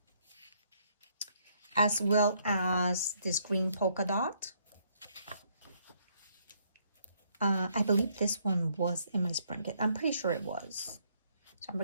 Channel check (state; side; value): inverted; both; correlation -0.70